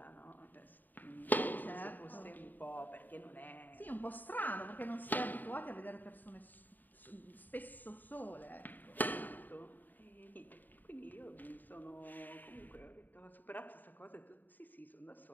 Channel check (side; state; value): right; late; 0.087 ms